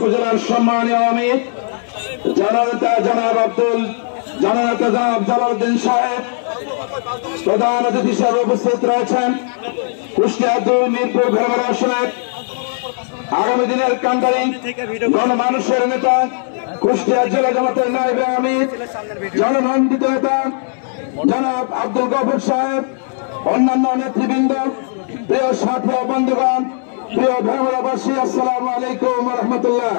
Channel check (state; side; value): silent; right; digital silence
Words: সম্মানীয় আমির জননেতা জনাব জালালউদ্দিন সাহেব, প্রধান অতিথি হিসেবে উপস্থিত রয়েছেন কুষ্টিয়া 2 মিরপুর ভেড়ামারা আসনের আগামী দিনের কান্ডারি গণমানুষের নেতা কুষ্টিয়া জেলা জামাতের নায়েবে আমির জনমন্ডিত নেতা জনাব আব্দুল গফুর সাহেব, অন্যান্য নেতৃবৃন্দ, প্রিয় সাথী ও বন্ধুগণ, প্রিয় ভেড়ামারাবাসী, আসসালামু আলাইকুম ওয়া রাহমাতুল্লাহ।